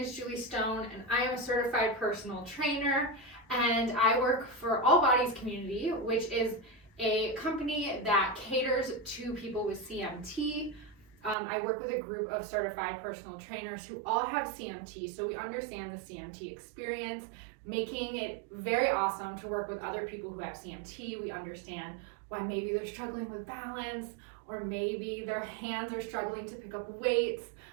Julie Stone and I am a certified personal trainer and I work for All Bodies Community, which is a company that caters to people with CMT. I work with a group of certified personal trainers who all have CMT, so we understand the CMT experience, making it very awesome to work with other people who have CMT. We understand why maybe they're struggling with balance or maybe their hands are struggling to pick up weights.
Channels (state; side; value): drops out; left; at 11.4 s